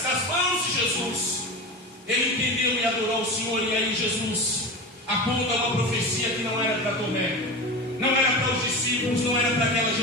das mãos de Jesus, ele entendeu e adorou o Senhor. E aí Jesus aponta uma profecia que não era para Tomé, não era para os discípulos, não era para aquela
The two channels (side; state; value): both; normal; correlation 0.27